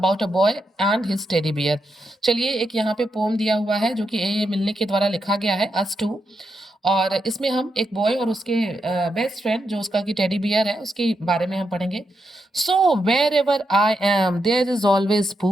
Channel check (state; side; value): normal; both; correlation 0.84